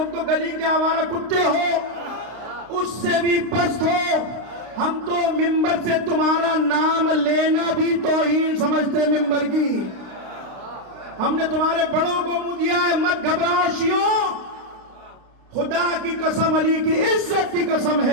گلی کے آوارہ کتے ہو, اس سے بھی پست ہو. ہم تو ممبر سے تمہارا نام لینا بھی توہین سمجھتے ہیں ممبر کی. ہم نے تمہارے بڑوں کو منہ دیا ہے. مت گھبراؤ شیعوں, خدا کی قسم, علی کی عزت کی قسم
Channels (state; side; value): late; left; 33 ms